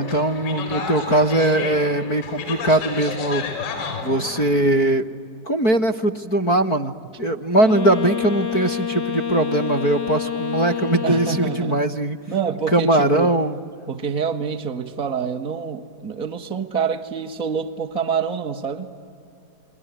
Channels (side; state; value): right; late; 4.5 ms